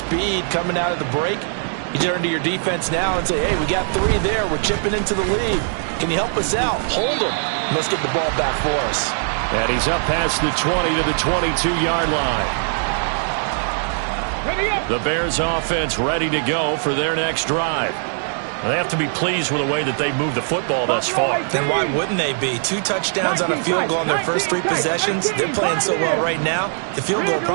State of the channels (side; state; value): left; silent; digital silence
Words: coming out of the break. You turn to your defense now and say, hey, we got 3 there. We're chipping into the lead. Can you help us out? Hold them. Let's get the ball back for us. And he's up past the 20 to the 22-yard line. The Bears offense ready to go for their next drive. They have to be pleased with the way that they moved the football thus far. Then why wouldn't they be? 2 touchdowns on a field goal on their first 3 possessions. They're playing so well right now, the field goal